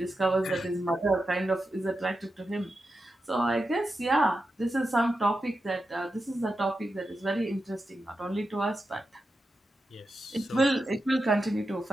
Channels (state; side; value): normal; both; correlation 0.89